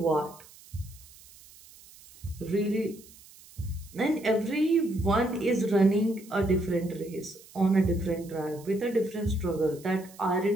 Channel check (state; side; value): noise; right; hiss, 22 dB below the sound